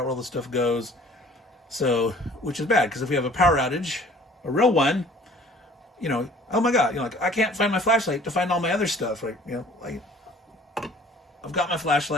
where all the stuff goes. So, which is bad, because if we have a power outage, a real one, oh my God, like I can't find my flashlight to find all my other stuff, right? I've got my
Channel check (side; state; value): both; normal; correlation 0.52